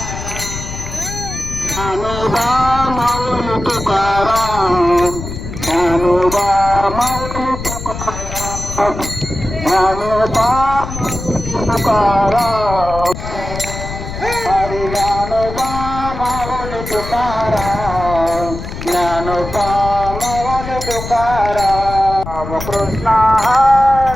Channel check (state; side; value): noise; left; rumble, 8 dB below the sound